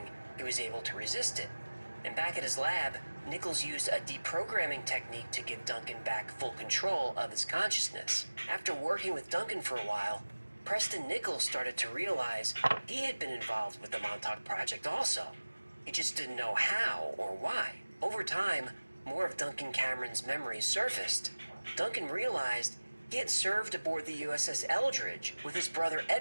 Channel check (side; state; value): both; inverted; correlation -1.00